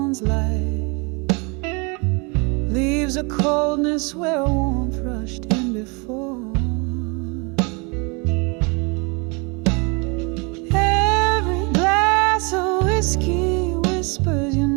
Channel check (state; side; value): quieter; left; 30.8 dB